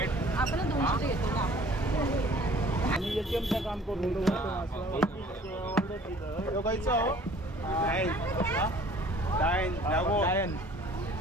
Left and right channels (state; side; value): normal; both; correlation 0.52